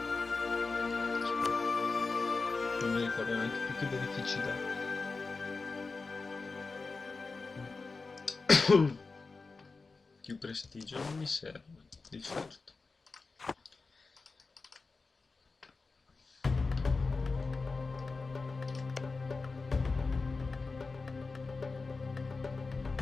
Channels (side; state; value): right; quieter; 4.1 dB